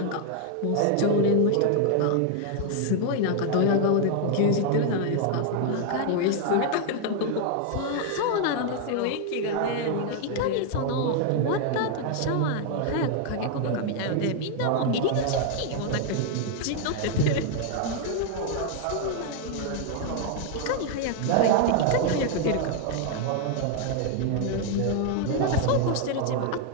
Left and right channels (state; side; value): different; both; correlation 0.00